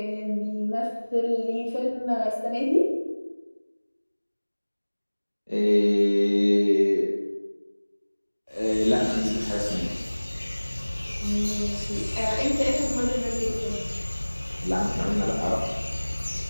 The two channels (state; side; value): inverted; both; correlation -1.00